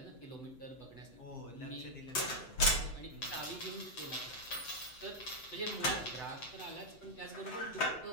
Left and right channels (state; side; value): late; right; 7.9 ms